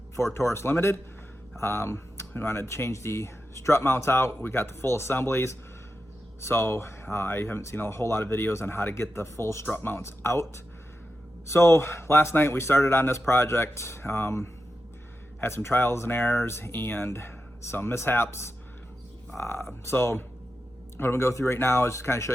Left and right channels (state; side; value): normal; both; correlation 0.90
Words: Ford Taurus Limited. We wanted to change the strut mounts out. We got the full assemblies. So I haven't seen a whole lot of videos on how to get the full strut mounts out. So last night we started on this project, had some trials and errors and some mishaps. So what I'm gonna go through right now is just kind of show